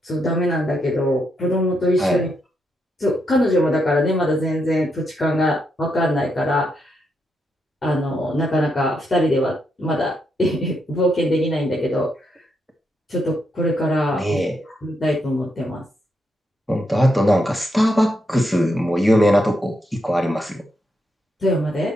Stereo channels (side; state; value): both; normal; correlation 0.81